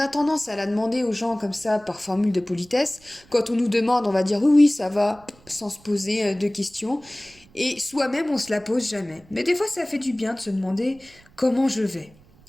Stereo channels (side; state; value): right; noise; rumble, 27 dB below the sound